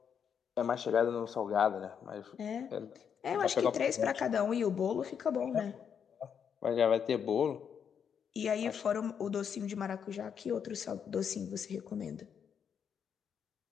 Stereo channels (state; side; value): quieter; right; 7.5 dB